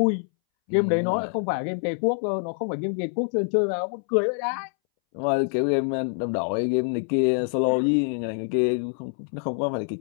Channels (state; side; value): silent; right; 61 dB below the other